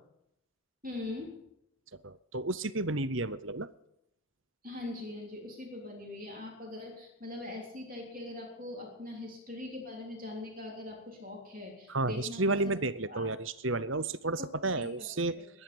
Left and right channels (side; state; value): both; normal; correlation 0.03